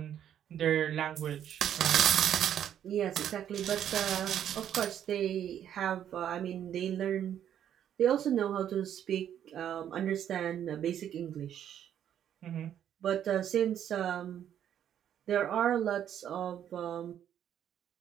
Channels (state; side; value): quieter; left; 10.0 dB